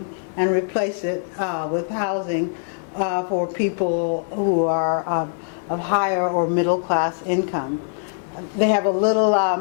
and replace it with housing for people who are of higher or middle-class income. They have a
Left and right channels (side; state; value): right; silent; 64 dB below the other